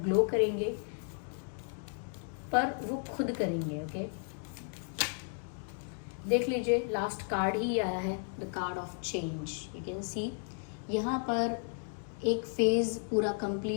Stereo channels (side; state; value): right; silent; 55 dB below the other